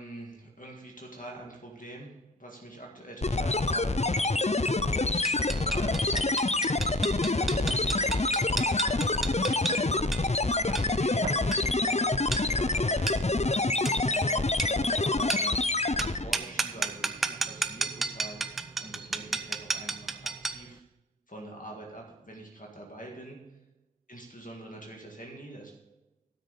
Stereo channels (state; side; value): normal; both; correlation 0.42